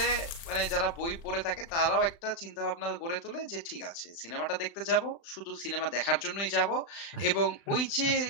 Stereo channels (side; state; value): right; late; 35 ms